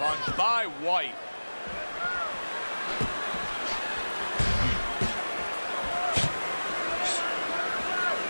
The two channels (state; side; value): inverted; both; correlation -1.00